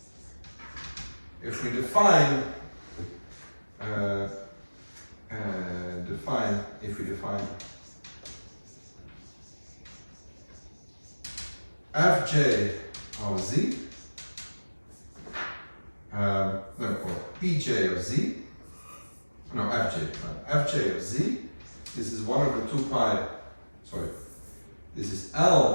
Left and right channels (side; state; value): both; inverted; correlation -1.00